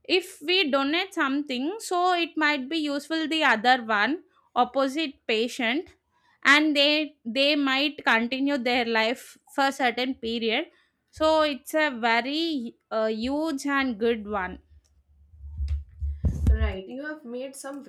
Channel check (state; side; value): identical; both; correlation 1.00